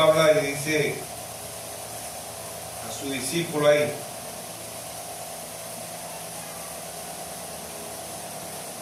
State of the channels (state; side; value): identical; both; correlation 1.00